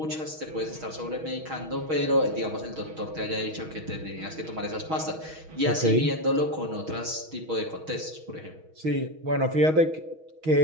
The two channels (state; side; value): late; left; 6.3 ms